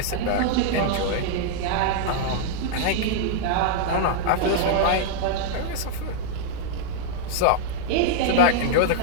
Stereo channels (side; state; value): both; different; correlation -0.01